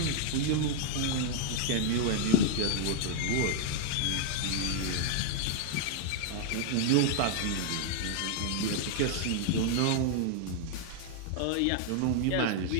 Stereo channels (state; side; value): different; both; correlation 0.00